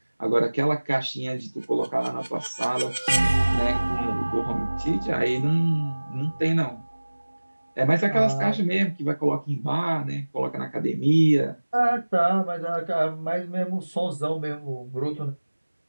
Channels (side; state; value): both; inverted; correlation -1.00